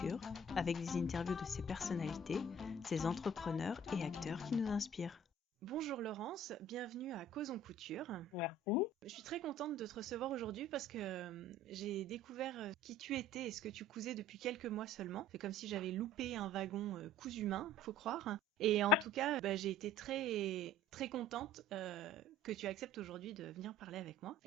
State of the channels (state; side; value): normal; both; correlation 0.49